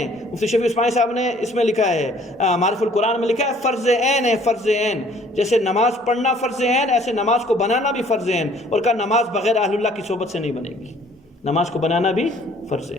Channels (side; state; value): both; normal; correlation 0.57